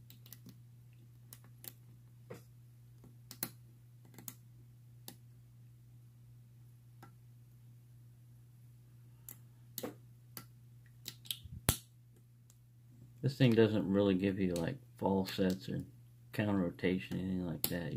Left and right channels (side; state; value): both; identical; correlation 1.00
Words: This thing doesn't really give you like false sets or counter rotation, anything like that.